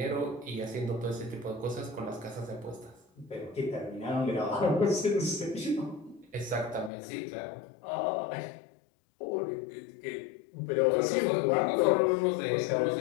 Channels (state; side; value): drops out; right; at 6.9 s